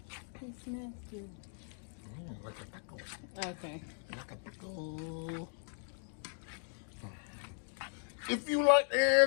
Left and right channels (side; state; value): right; silent; 53 dB below the other